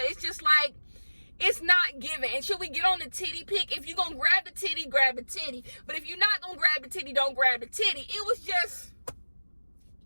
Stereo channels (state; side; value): inverted; both; correlation -1.00